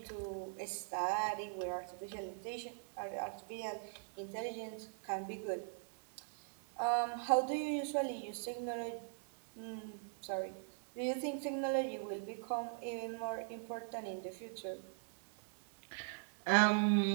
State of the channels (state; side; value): silent; left; 50 dB below the other